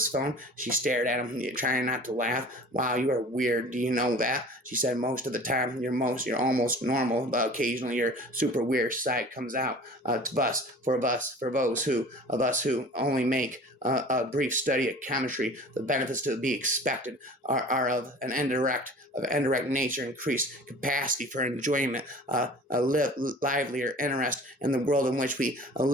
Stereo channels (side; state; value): both; normal; correlation 0.43